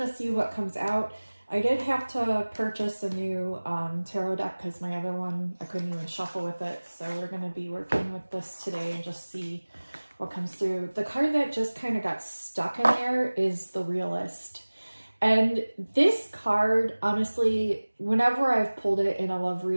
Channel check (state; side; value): inverted; both; correlation -1.00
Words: see what comes out. I did have to purchase a new tarot deck because my other one, I couldn't even shuffle with it. So we're gonna be working with this today and just see what comes through. The card that just kind of got stuck in there is the Realist. And this card, honestly, whenever I've pulled it in a love